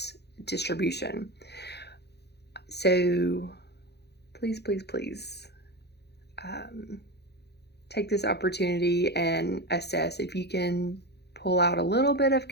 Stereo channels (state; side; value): late; right; 0.48 ms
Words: distribution. So please, take this opportunity and assess if you can pull out a little bit of